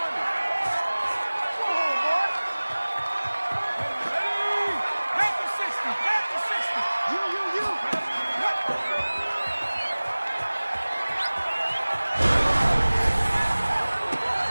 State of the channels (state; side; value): inverted; both; correlation -1.00